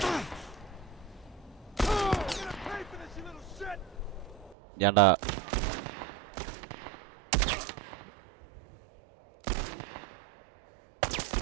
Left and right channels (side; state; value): left; drops out; at 4.5 s